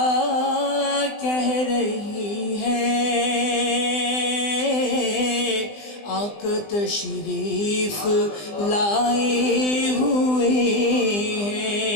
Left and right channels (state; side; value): late; right; 20 ms